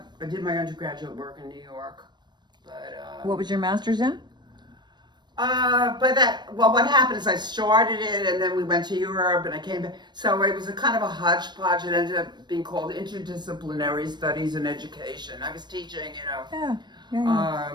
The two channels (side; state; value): left; late; 0.21 ms